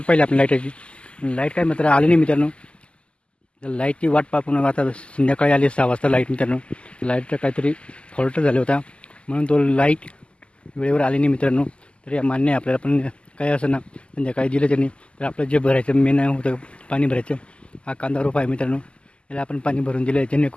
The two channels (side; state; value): right; late; 0.053 ms